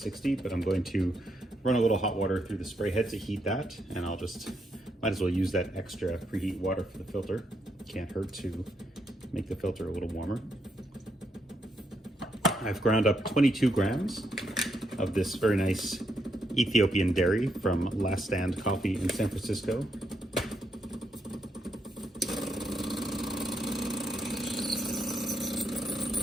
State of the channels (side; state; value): both; normal; correlation 0.79